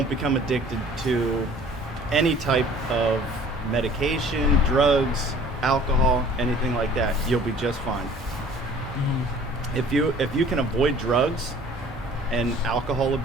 become addicted to any type of medication, drugs, alcohol, anything like that. You'll be just fine. If you can avoid drugs and alcohol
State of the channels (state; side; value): normal; both; correlation 0.50